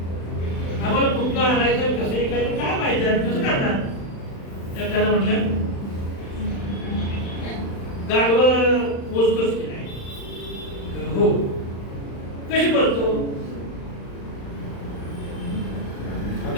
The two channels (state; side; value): late; right; 35 ms